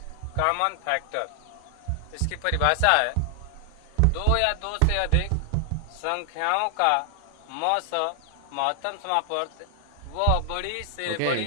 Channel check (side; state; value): both; different; correlation 0.00